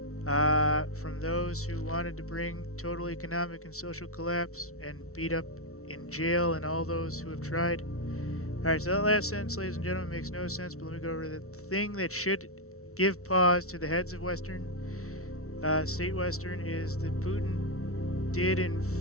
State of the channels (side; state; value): right; late; 0.63 ms